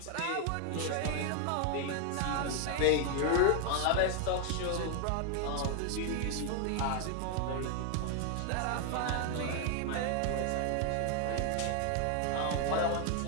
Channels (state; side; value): different; both; correlation 0.00